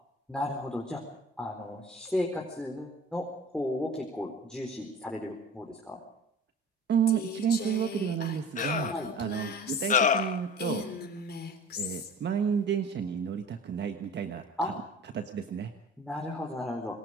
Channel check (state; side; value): normal; both; correlation 0.41